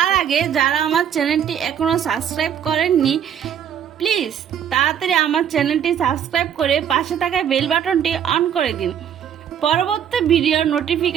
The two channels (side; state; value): left; quieter; 9.0 dB